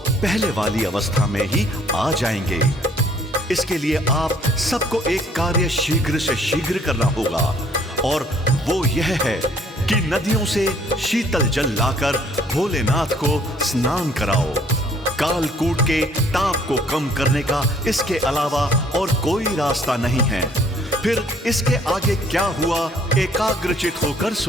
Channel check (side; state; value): both; normal; correlation 0.61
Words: पहले वाली अवस्था में ही आ जाएंगे। इसके लिए आप सबको एक कार्य शीघ्र से शीघ्र करना होगा, और वो यह है कि नदियों से शीतल जल लाकर भोलेनाथ को स्नान कराओ। कालकूट के ताप को कम करने का इसके अलावा और कोई रास्ता नहीं है। फिर इसके आगे क्या हुआ, एकाग्रचित होकर